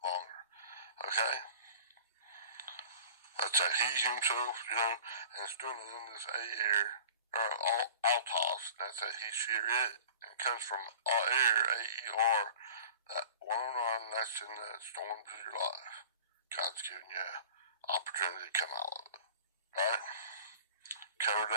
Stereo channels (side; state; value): both; inverted; correlation -0.42